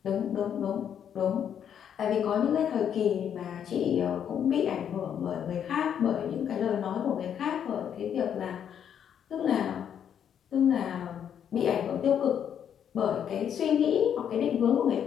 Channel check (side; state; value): right; quieter; 8.8 dB